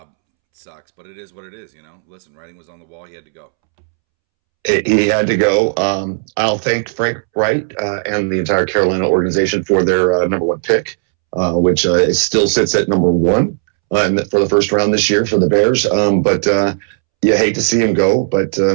It sucks, but it is what it is. Listen, writing was on the wall. He had to go. He had to go. I'll thank Frank Wright and the entire Carolina organization for their number one pick, which still sits at number one for the first round this year for the Bears. But you hate to see him go, but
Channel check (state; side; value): silent; left; 70 dB below the other